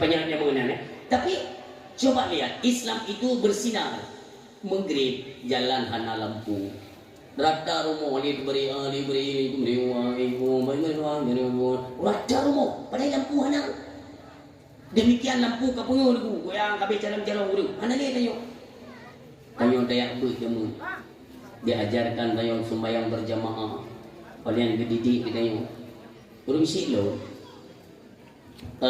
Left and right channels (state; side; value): identical; both; correlation 1.00